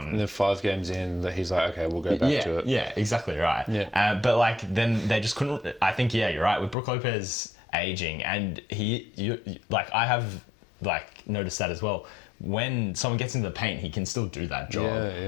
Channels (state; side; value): drops out; right; at 6.8 s